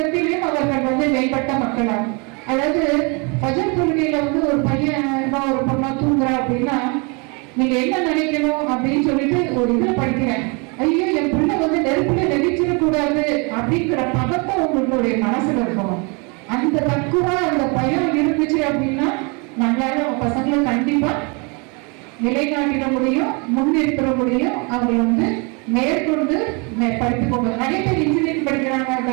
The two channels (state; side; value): quieter; left; 31.7 dB